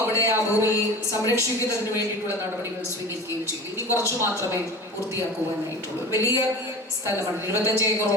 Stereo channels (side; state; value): both; normal; correlation 0.35